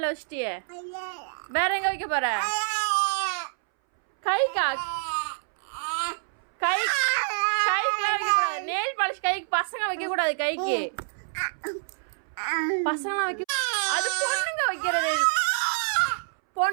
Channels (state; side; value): silent; left; 60 dB below the other